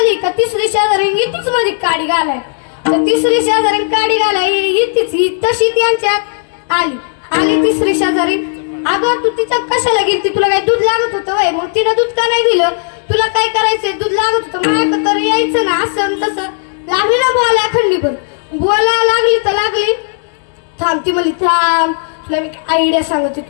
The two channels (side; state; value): right; silent; digital silence